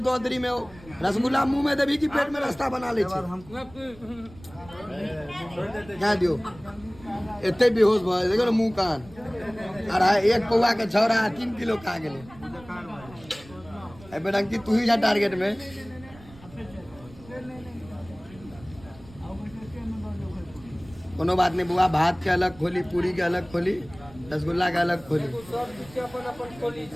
दो अंदरी में रसगुल्ला मुंह में देवी की पेट में रास्ता बना ले क्या दियो इतने बेहोश भाई देखो ना मुंह कान अरे एक पौवा के छौरा 3 किलो खा गेले बेटा अंकित तू ही जा टारगेट में कोनो बात नहीं बुआ भात के अलग खोली पूरी के अलग खोली रसगुल्ला के अलग खोली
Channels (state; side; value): noise; right; rumble, 21 dB below the sound